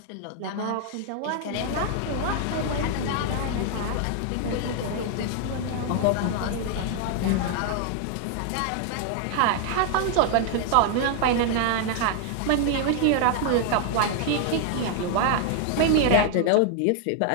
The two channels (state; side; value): different; both; correlation 0.00